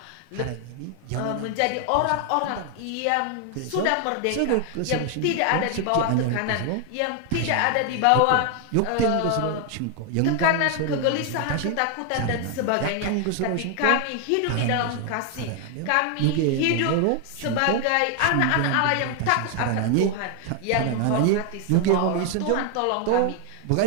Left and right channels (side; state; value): both; different; correlation 0.00